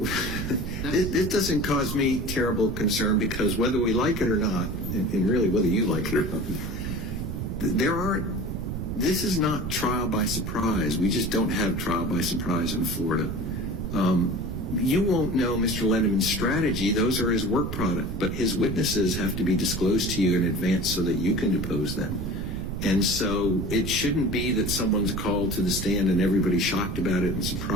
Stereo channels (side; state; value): right; noise; rumble, 4 dB below the sound